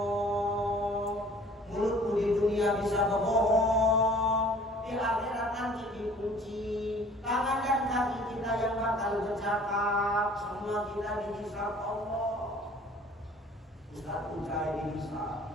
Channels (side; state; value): both; normal; correlation 0.51